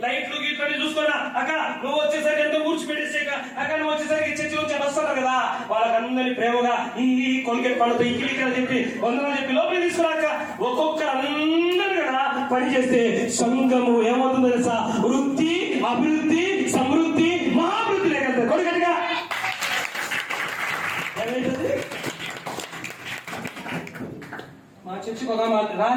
లైట్లు గీట్లు చూసుకున్నా అక్క, నువ్వు వచ్చేసరికి ఎంతో ఊడ్చిపెట్టేసాక అక్క, నువ్వు వచ్చేసరికి చర్చి నుంచి వస్తున్నారు కదా, వాళ్ళకందరినీ ప్రేమగా ఈ కొలికెట్ పళ్ళతో ఈ కిలికలు చెప్పి వందలు చెప్పి లోపలికి తీసుకున్నాక ఒక్కొక్కరు అందరూ కదా పని చేస్తే సంఘము ఏమవుతుందో తెలుసా? వృద్ధి, అభివృద్ధి, సమృద్ధి, మహాభివృద్ధి లేకపోతే కొడుకటిగా ఏమైతుంది? మా చర్చికి ఒక మాట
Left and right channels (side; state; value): both; identical; correlation 1.00